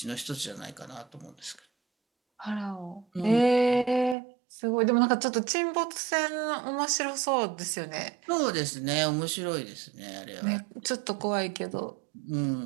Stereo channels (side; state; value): left; drops out; at 4.2 s